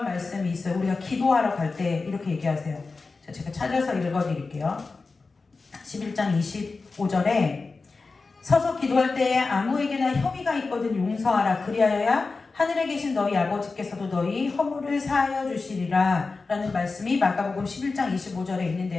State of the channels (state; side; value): quieter; right; 4.0 dB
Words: 말씀이 있어요. 우리가 기도하러 갈 때 이렇게 얘기하세요. 제가 찾아서 읽어드릴게요. 11장 25절에 서서 기도할 때에 아무에게나 혐의가 있거든 용서하라. 그리하여야 하늘에 계신 너희 아버지께서도 너희 허물을 사하여 주시리라 라는 말씀이 마가복음 11장 25절에